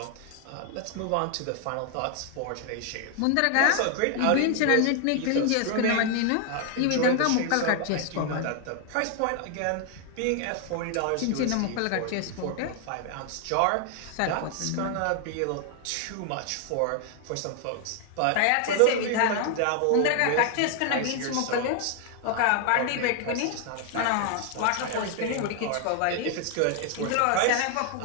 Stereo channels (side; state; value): both; different; correlation 0.00